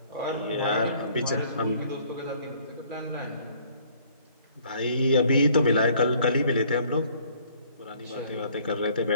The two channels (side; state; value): both; inverted; correlation -0.59